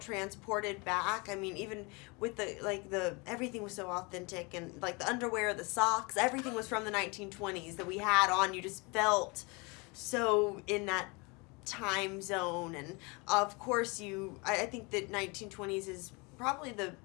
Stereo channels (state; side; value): quieter; right; 28.5 dB